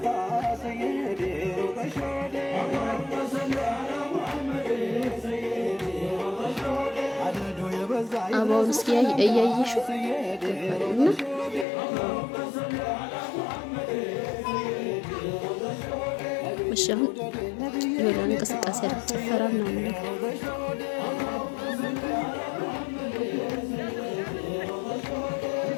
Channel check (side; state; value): right; drops out; at 11.7 s